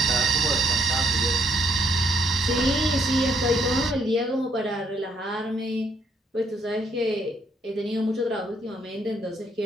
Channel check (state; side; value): normal; both; correlation 0.71